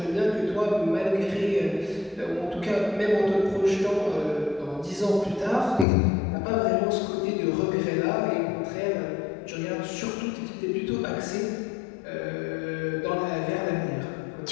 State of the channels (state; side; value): drops out; right; at 5.9 s